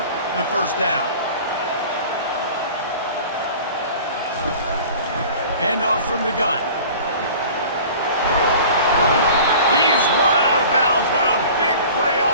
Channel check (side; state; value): both; inverted; correlation -0.43